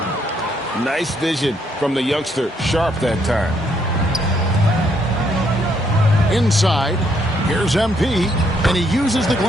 Nice vision from the youngster, Sharp, that time. Inside, here's MP, and he uses the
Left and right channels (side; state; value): both; normal; correlation 0.72